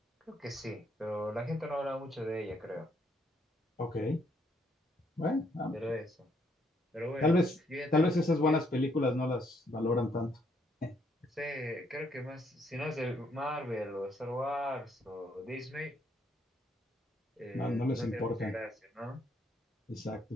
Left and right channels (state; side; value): normal; both; correlation 0.71